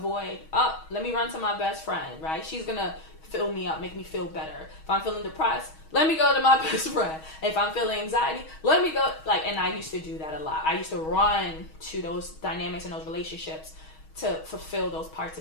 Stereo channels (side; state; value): right; late; 6.3 ms